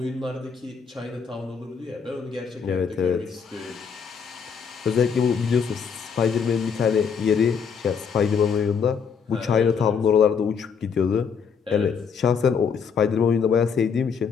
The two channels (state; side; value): quieter; right; 6.4 dB